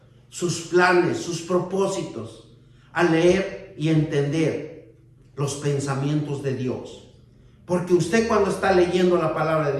sus planes, sus propósitos, al leer y entender los pensamientos de Dios. Porque usted cuando está leyendo la palabra de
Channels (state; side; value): identical; both; correlation 1.00